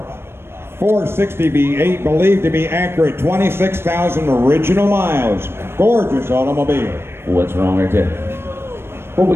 460 V8, believed to be accurate, 26,000 original miles. Gorgeous automobile. What's wrong right there? What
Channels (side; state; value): left; late; 0.12 ms